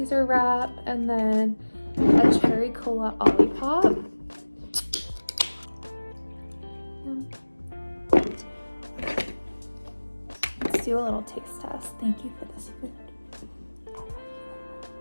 wrap, and then a cherry cola olipop. Let's do a little taste test. Thank you for this food.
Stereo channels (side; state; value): both; inverted; correlation -1.00